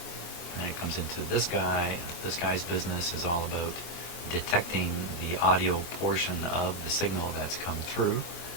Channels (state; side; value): late; right; 24 ms